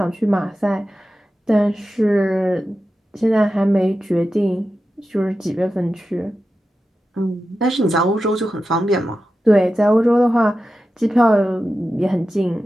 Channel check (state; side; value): normal; both; correlation 0.92